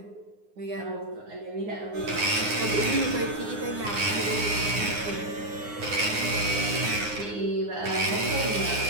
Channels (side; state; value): left; late; 9.7 ms